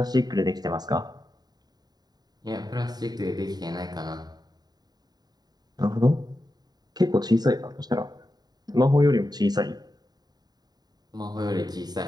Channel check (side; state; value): left; late; 0.20 ms